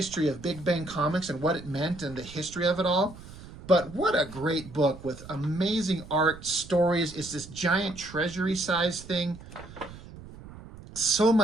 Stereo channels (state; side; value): noise; right; rumble, 16 dB below the sound